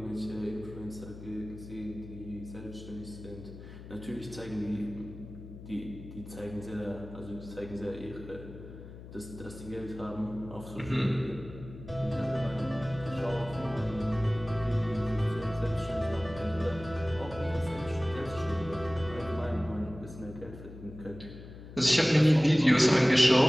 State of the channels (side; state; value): left; noise; hum, 14 dB below the sound